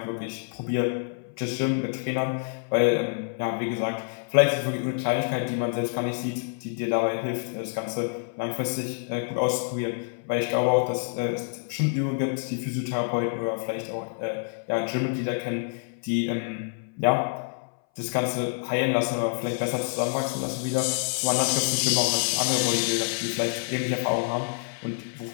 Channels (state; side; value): silent; right; 59 dB below the other